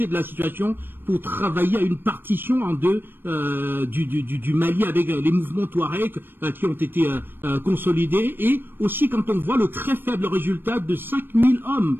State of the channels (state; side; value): late; left; 0.097 ms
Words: de la situation pour travailler à une partition en deux du Mali avec les mouvements Touareg qui ont été consolidés, et aussi quand on voit le très faible résultat de 5000 hommes